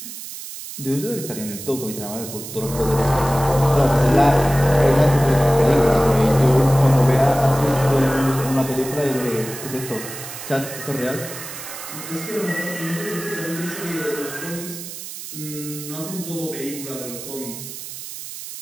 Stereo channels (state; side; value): noise; right; hiss, 11 dB below the sound